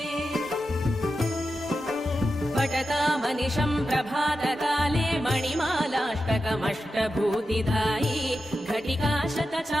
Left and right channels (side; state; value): both; normal; correlation 0.90